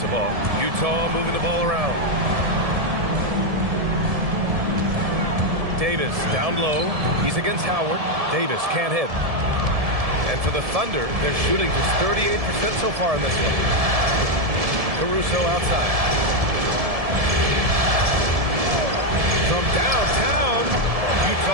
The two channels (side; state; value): left; late; 1.7 ms